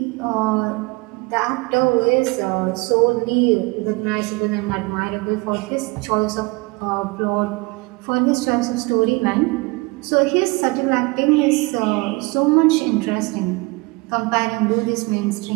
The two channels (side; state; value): left; quieter; 25.9 dB